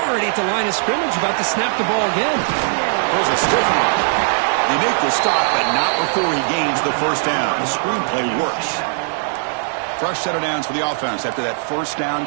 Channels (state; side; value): silent; left; 67 dB below the other